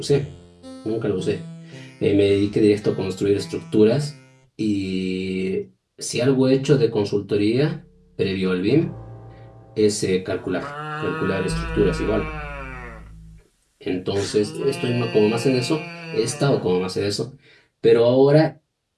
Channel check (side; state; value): both; identical; correlation 1.00